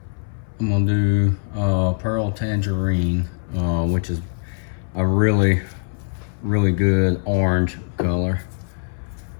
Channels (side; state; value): right; silent; 61 dB below the other